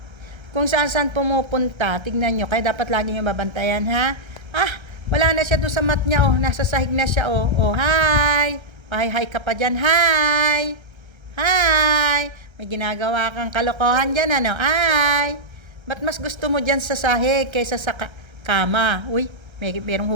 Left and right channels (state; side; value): late; left; 1.3 ms